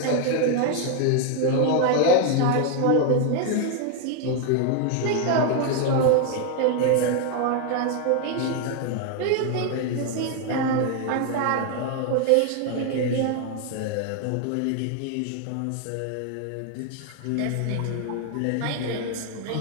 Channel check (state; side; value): different; both; correlation 0.01